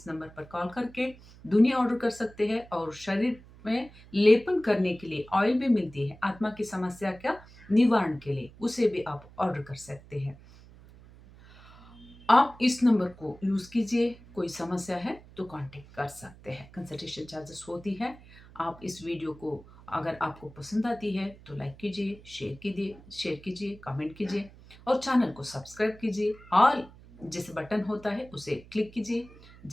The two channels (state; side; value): noise; right; hum, 21 dB below the sound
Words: नंबर पर कॉल करके दुनी ऑर्डर कर सकते हैं। और शरीर में लेपन करने के लिए ऑयल भी मिलती है आत्मा की समस्या का निवारण के लिए, उसे भी आप ऑर्डर कर सकते हैं। आप इस नंबर को यूज कीजिए, कोई समस्या है तो कांटेक्ट कर सकते हैं। कंसल्टेशन चार्जेस होती है। आप इस वीडियो को अगर आपको पसंद आती है तो लाइक कीजिए, शेयर कीजिए, कमेंट कीजिए और चैनल को सब्सक्राइब कीजिए। ऑल जिस बटन होता है उसे क्लिक कीजिए।